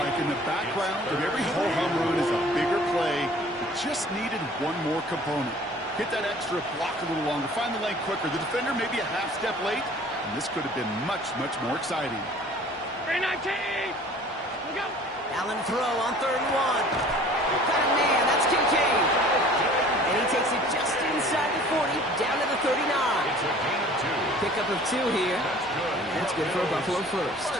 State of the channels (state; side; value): normal; both; correlation 0.49